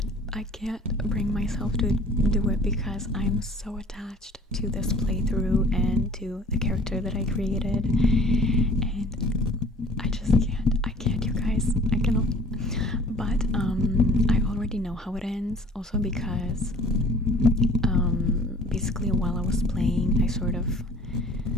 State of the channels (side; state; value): both; normal; correlation 0.50